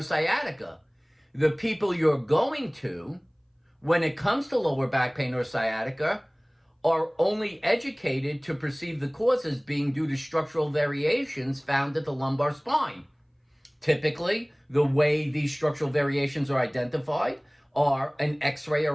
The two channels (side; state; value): both; identical; correlation 1.00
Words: sciatica. The people you're going to, when it comes to lower back pain or sciatica, are only educated to perceive the causes being due to structural variations found at the lumbar spine. Typically, the way these structural variations are identified are an X-ray